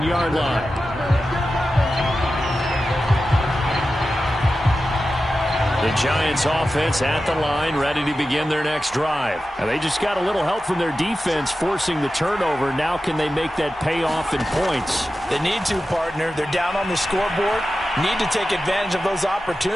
line. The Giants offense at the line, ready to begin their next drive. And they just got a little help from their defense forcing the turnover. Now can they make that pay off in points? They need to, partner. They're down on the scoreboard. Need to take advantage of those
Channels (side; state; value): both; normal; correlation 0.93